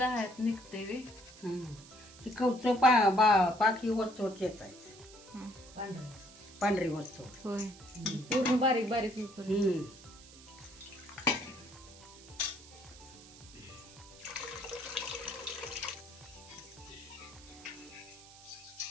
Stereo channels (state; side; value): noise; right; hiss, 20 dB below the sound